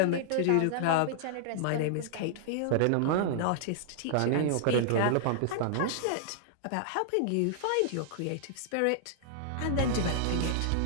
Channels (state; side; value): different; both; correlation -0.01